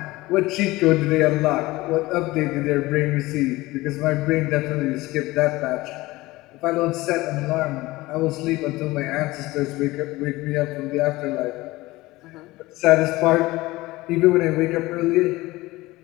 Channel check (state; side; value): quieter; right; 19.6 dB